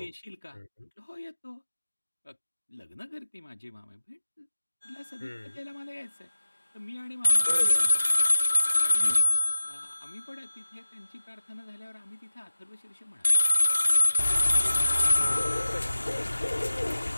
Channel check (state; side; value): inverted; both; correlation -1.00